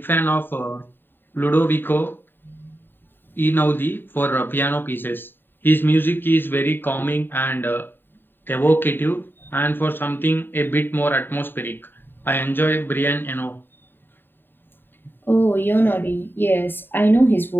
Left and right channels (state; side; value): late; right; 0.097 ms